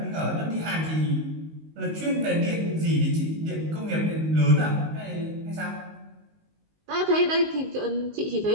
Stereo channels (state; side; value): late; left; 19 ms